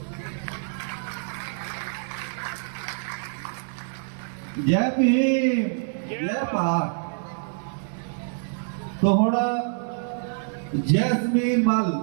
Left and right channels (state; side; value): silent; left; 61 dB below the other